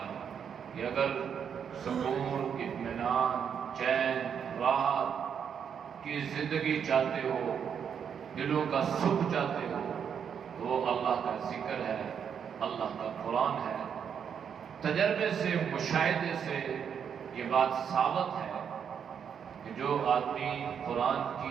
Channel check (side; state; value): left; quieter; 7.6 dB